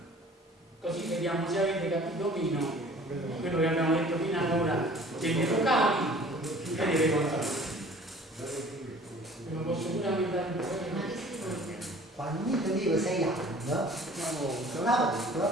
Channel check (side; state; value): both; normal; correlation 0.49